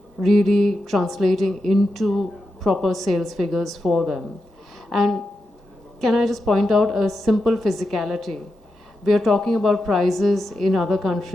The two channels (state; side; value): normal; both; correlation 0.88